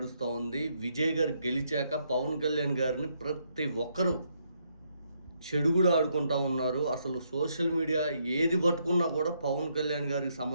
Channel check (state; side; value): inverted; both; correlation -0.75